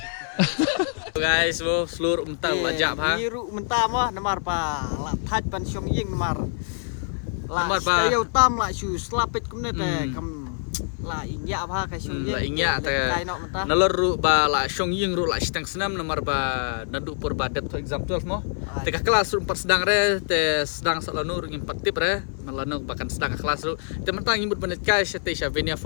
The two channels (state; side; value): silent; right; 57 dB below the other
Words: Guys, wo seluruh menta lajak ha. Biru menta mo namar pa. La thaj pan syong ying namar. La kayo tam la su slapit kumne te kam la inya apa kai syong ying. La inya te nalor ru ba la syong ying ru la stang senam namar ba nadu pur ba det exam 12 mo. Te ka kelas ru 4 sedang re te sedang salanu ru 4 tip re malano bahkan sedang kelas ru te mentang imut banet kai te sya Venia